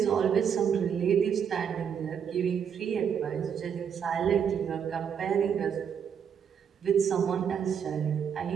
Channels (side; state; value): left; quieter; 7.6 dB